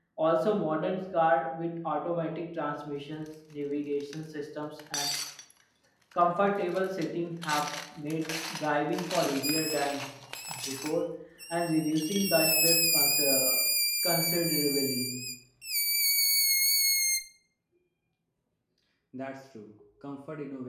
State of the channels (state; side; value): identical; both; correlation 1.00